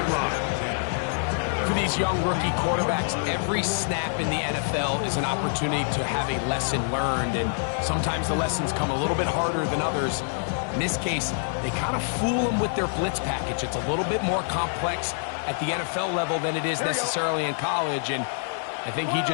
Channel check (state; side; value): silent; right; digital silence